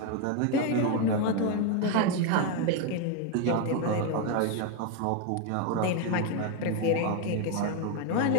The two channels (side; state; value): both; different; correlation 0.01